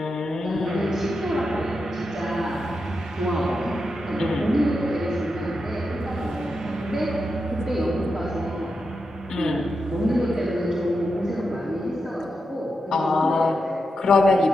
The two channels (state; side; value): normal; both; correlation 0.87